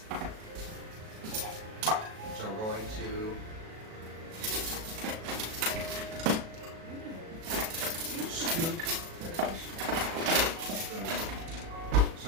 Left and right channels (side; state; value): left; late; 37 ms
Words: So we're going to scoop.